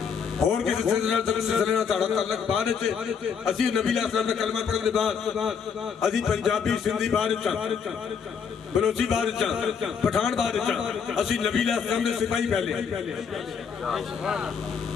और किसी सिलसिले नाल तुहाडा तल्लक बाद असी नबी अलैहि का कलमा पढ़ने के बाद असी पंजाबी सिंधी बाहर दिता बलोची बाहर दिता पठान बाहर दिता असी नबी अलैहि के सिपाही पहले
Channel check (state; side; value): quieter; right; 6.6 dB